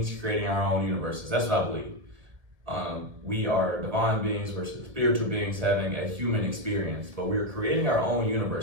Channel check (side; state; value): left; late; 1.9 ms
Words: creating our own universes. That's what I believe. We are divine beings versus spiritual beings having a human experience, but we are creating our own